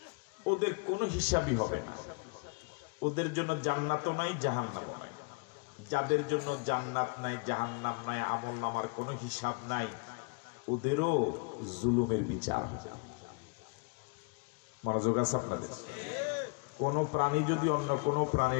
ওদের কোনো হিসাবই হবে না। ওদের জন্য জান্নাতও নাই, জাহান্নামও নাই। যাদের জন্য জান্নাত নাই, জাহান্নাম নাই, আমল নামার কোনো হিসাব নাই, ওদেরও জুলুমের বিচার হবে। মনোযোগ আছে আপনাদের? কোন প্রাণী যদি অন্য কোন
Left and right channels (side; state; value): right; quieter; 33.8 dB